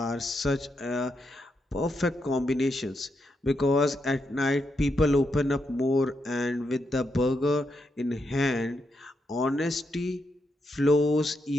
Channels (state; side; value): normal; both; correlation 0.82